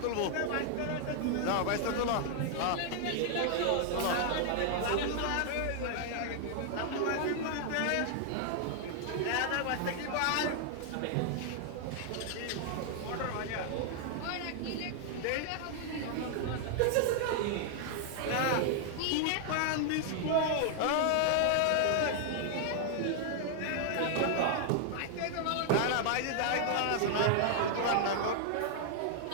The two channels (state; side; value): different; both; correlation 0.00